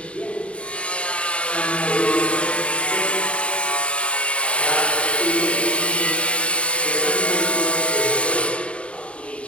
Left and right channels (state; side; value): late; right; 0.061 ms